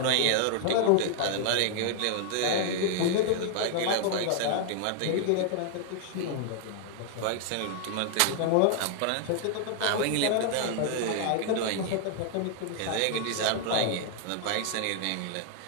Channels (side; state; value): both; different; correlation -0.01